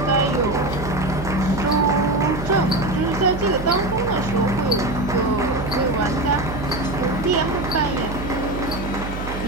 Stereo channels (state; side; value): noise; right; hum, 8 dB below the sound